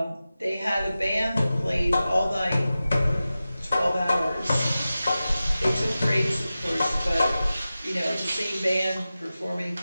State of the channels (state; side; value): inverted; both; correlation -0.94